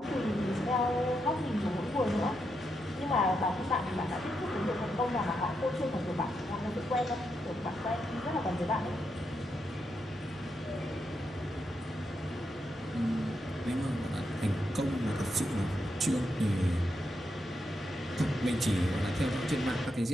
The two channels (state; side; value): normal; both; correlation 0.83